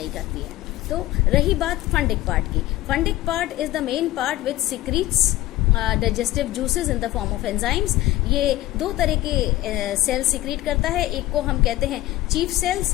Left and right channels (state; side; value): quieter; right; 16.4 dB